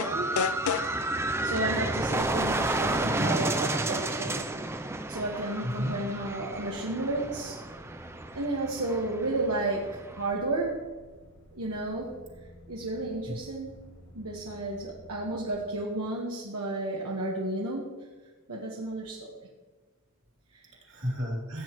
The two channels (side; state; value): both; normal; correlation 0.22